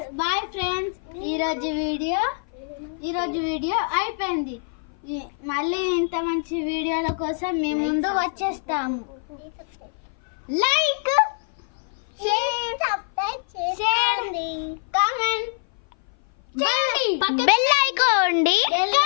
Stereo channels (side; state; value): right; silent; 57 dB below the other